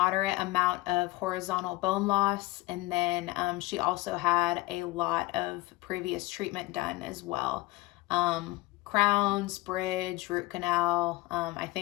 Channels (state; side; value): quieter; right; 19.9 dB